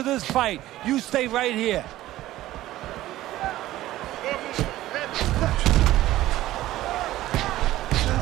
this fight. You stay right here.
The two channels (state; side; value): quieter; left; 15.3 dB